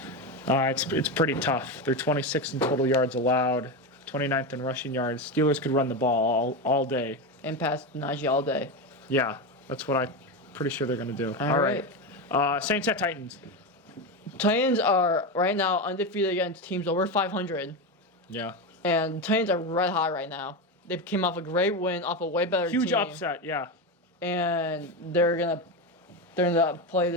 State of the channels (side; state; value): both; normal; correlation 0.15